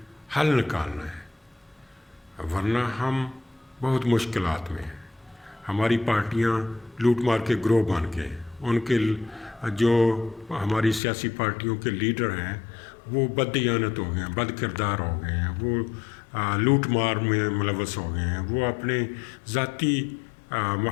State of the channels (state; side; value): drops out; right; at 11.0 s